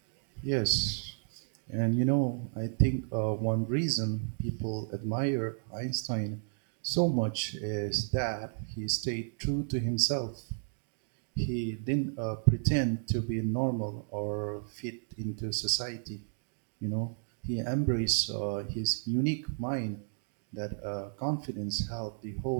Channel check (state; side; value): silent; left; digital silence